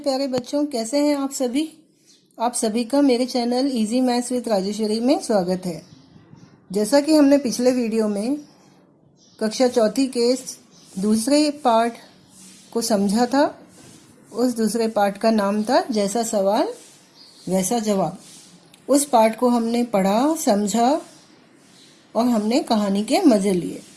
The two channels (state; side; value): identical; both; correlation 1.00